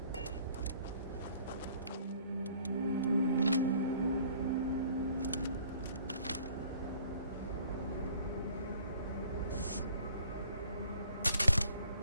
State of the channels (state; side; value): inverted; both; correlation -0.56